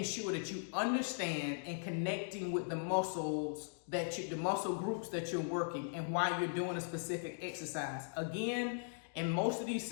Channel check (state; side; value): silent; right; digital silence